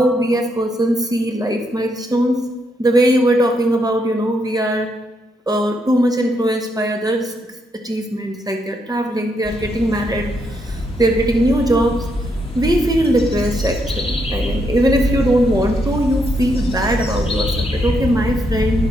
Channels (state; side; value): normal; both; correlation 0.77